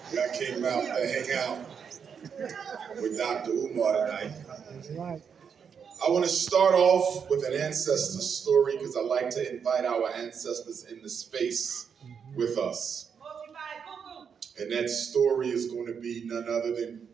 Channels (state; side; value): quieter; left; 6.9 dB